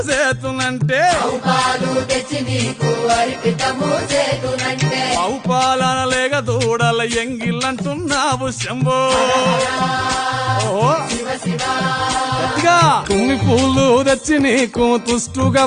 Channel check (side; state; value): both; identical; correlation 1.00